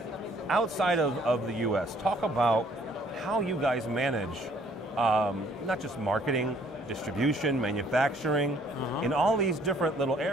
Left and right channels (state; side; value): normal; both; correlation 0.61